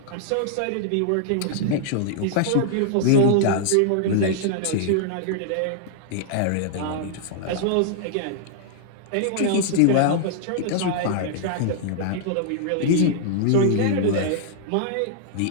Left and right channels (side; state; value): both; different; correlation -0.01